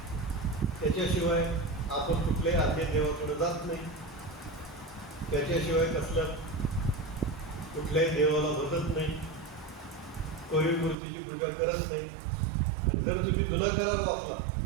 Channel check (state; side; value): drops out; left; at 11.0 s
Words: त्याच्याशिवाय आपण कुठल्याही आज्ञा देवाकडे जात नाही. त्याच्याशिवाय कुठल्याही देवाला बदलत नाही, कोरीव मूर्तीची पूजा करत नाही. आणि जर तुम्ही जुना करार वाचला